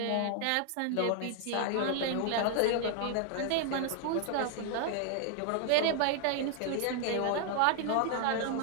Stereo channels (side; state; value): both; different; correlation 0.00